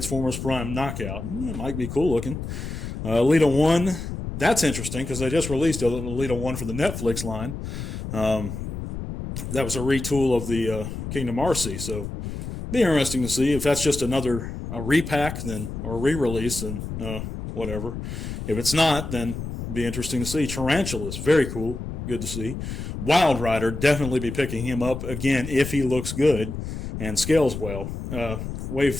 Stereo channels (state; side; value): noise; left; rumble, 7 dB below the sound